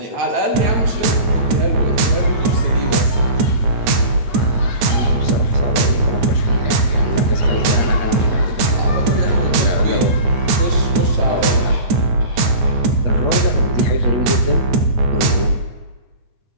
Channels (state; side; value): late; left; 9.4 ms